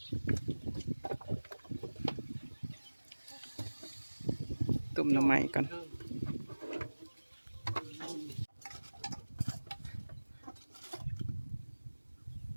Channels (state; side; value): inverted; both; correlation -1.00